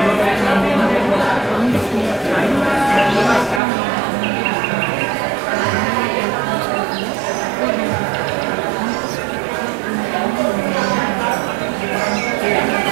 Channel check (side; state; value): left; drops out; at 3.6 s